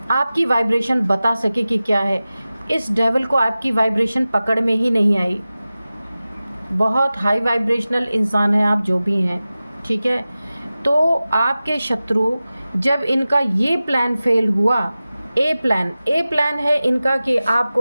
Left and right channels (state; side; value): inverted; both; correlation -0.96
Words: आपकी वाइब्रेशन बता सके कि क्या है। इस डेविल को आपकी वाइब्रेशन पकड़ में ही नहीं आई, बहुत हाई वाइब्रेशनल इंसान है आप जो भी हैं, ठीक है। तो आपके शत्रु, जब इनका ये प्लान फेल हुआ, ए प्लान है इनका कि